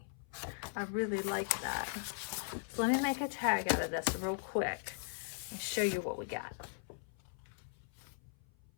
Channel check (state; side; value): silent; right; 52 dB below the other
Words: I really like that. So let me make a tag out of this real quick and show you what we got.